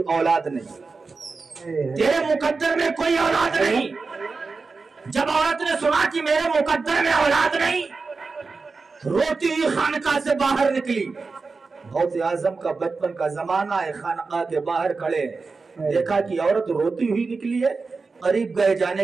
औलाद नहीं, तेरे मुकद्दर में कोई औलाद नहीं। जब औरत ने सुना कि मेरे मुकद्दर में औलाद नहीं, रोती हुई खानका से बाहर निकली। गौसे आजम का बचपन का जमाना है, खानका के बाहर खड़े, देखा कि औरत रोती हुई निकली है। करीब गए,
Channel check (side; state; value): left; quieter; 4.3 dB